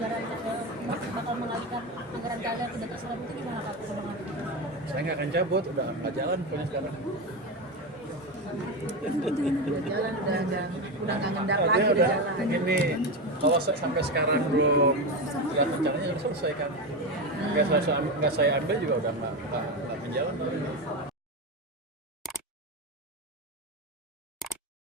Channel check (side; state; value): both; normal; correlation 0.16